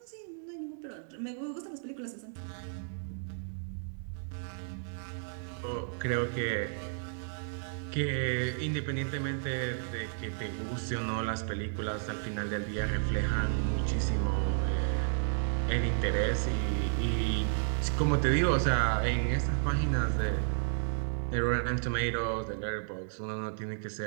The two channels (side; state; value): left; silent; digital silence